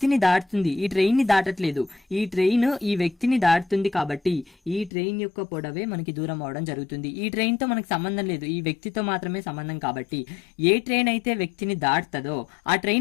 దాటుతుంది, ఈ ట్రైన్ని దాటట్లేదు. ఈ ట్రైన్ ఈ వ్యక్తిని దాటుతుంది కాబట్టి ఈ ట్రైన్ యొక్క పొడవే మనకి దూరం అవ్వడం జరుగుతుంది. ఈ ట్రైన్తో మనకి సంబంధం లేదు, ఈ వ్యక్తితో మాత్రమే సంబంధం. కాబట్టి ఏ ట్రైన్ అయితే వ్యక్తిని దాటుతుందో, ఆ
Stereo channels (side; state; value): right; drops out; at 4.9 s